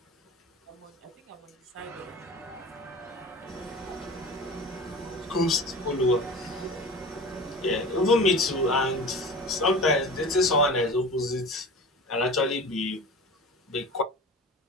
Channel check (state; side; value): normal; both; correlation 0.35